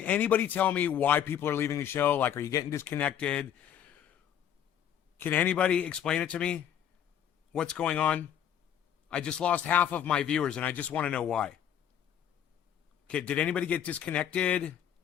anybody tell me why people are leaving the show? Like, are you getting disconnected? Can anybody explain it to me? What's going on? I just lost half of my viewers, and I just want to know why. Okay, did anybody get disconnected?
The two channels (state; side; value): quieter; right; 9.5 dB